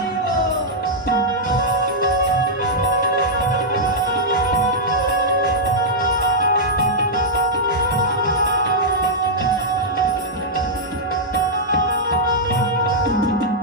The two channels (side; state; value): both; normal; correlation -0.08